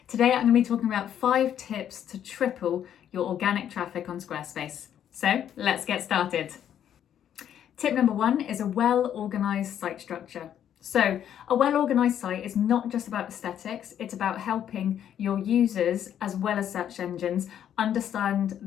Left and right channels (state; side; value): quieter; right; 9.9 dB